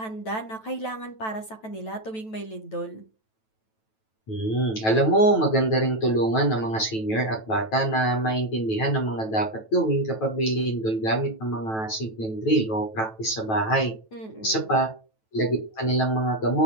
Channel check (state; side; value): late; right; 9.1 ms